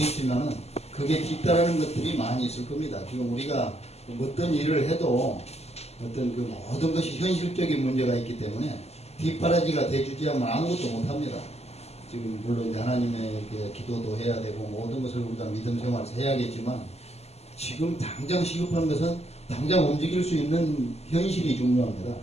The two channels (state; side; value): late; right; 0.30 ms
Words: 그게 뒤따르는 것들이 많이 있을 겁니다. 지금 우리가 어떤 일을 해도 어떤 모든 것이 현실적인 문제가 있기 때문에 뒷바라지가 돼주지 않으면 아무것도 못합니다. 지금 물론 이제 하나님에게 기도도 해야 되고 모든 것을 우리가 믿음 생활에서 해야겠지만, 지금 당장 시급한 것은 당장 움직일 수 있는 현실이 중요합니다.